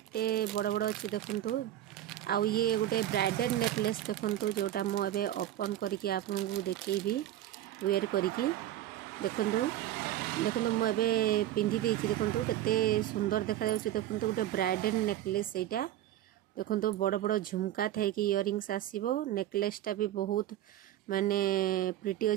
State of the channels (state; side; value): quieter; left; 12.8 dB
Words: बड़ बड़ अच्छी। देखंतु आउ ये गोटे ब्राइडल नेकलेस देखंतु जोटा मु एबे ओपन करिकि आपन को देखैबी वेयर करिकि। देखंतु देखंतु मु एबे पिंधि देछि। देखंतु केते सुंदर देखा जाउछि। देखंतु गोटे ब्राइडल नेकलेस एटा। देखो बड़ बड़ झुमका थे कि इयरिंग्स आसीबो। नेकलेसटा भी बहुत माने प्रिटी